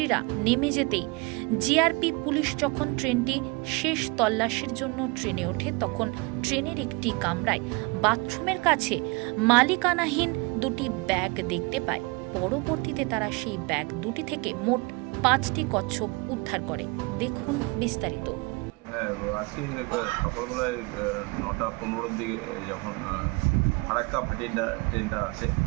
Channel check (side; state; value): left; quieter; 26.9 dB